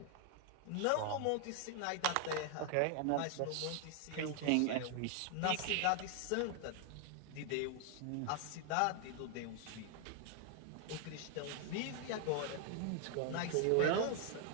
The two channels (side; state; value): both; different; correlation 0.00